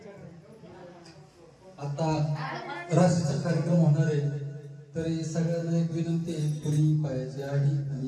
आता राशीचा कार्यक्रम होणार आहे तरी सगळ्यांना एक विनंती आहे पुरी पायाची आडी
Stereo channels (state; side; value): identical; both; correlation 1.00